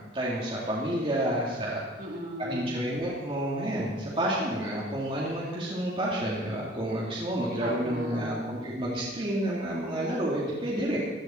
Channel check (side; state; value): both; normal; correlation 0.51